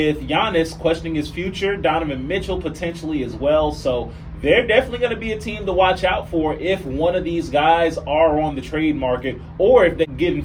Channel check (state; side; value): identical; both; correlation 1.00